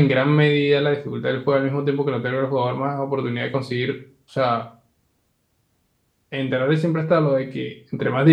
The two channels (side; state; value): both; identical; correlation 1.00